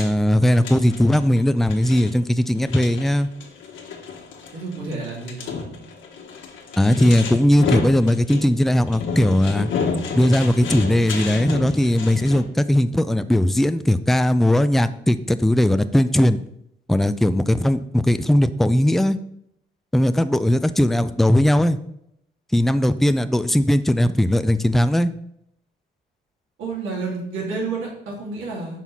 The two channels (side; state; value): both; normal; correlation 0.95